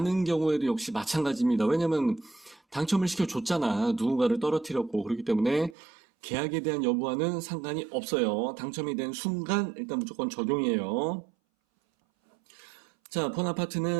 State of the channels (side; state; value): left; drops out; at 5.8 s